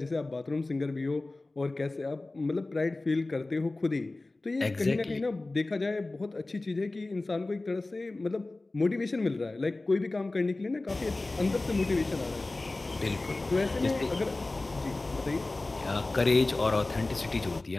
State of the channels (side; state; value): right; quieter; 3.0 dB